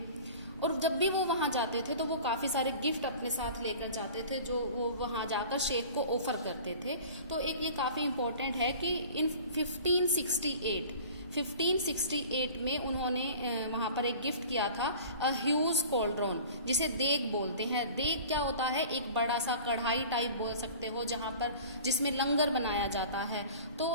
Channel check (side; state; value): both; inverted; correlation -0.42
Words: और जब भी वो वहाँ जाते थे तो वो काफ़ी सारे गिफ्ट अपने साथ लेकर जाते थे जो वो वहाँ जाकर शेख को ऑफर करते थे। तो एक ये काफ़ी इम्पोर्टेंट है कि इन 1568 में उन्होंने वहाँ पर एक गिफ्ट किया था, अ ह्यूज कॉल्ड्रोन, जिसे देग बोलते हैं। देग क्या होता है? एक बड़ा सा कढ़ाई टाइप बोल सकते हो, जहाँ पर जिसमें लंगर बनाया जाता है। तो